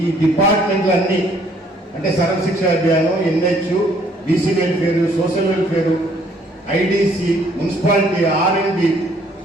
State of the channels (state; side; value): normal; both; correlation 0.63